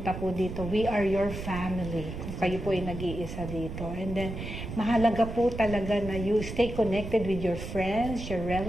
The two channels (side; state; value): right; noise; rumble, 8 dB below the sound